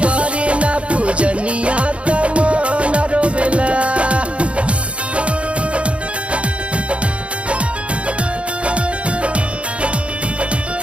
करी ना पूजनिया तमान रोवेला।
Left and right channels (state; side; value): late; left; 0.061 ms